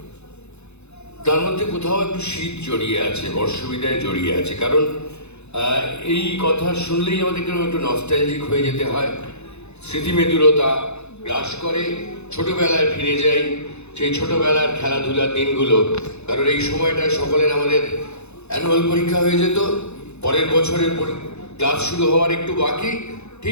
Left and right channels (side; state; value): right; late; 0.81 ms